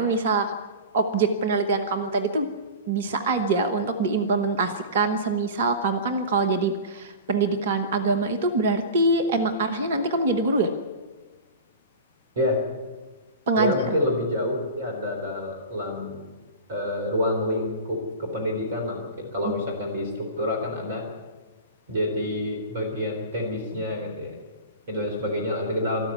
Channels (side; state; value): both; inverted; correlation -0.31